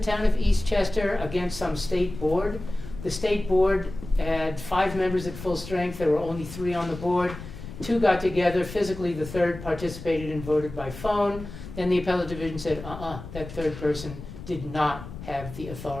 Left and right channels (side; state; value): left; noise; rumble, 12 dB below the sound